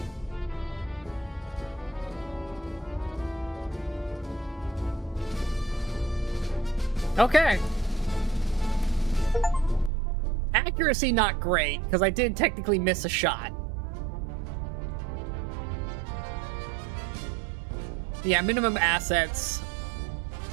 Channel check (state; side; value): drops out; left; at 9.9 s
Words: Okay. Accuracy not great, because I did technically miss a shot. Yeah, minimum assets.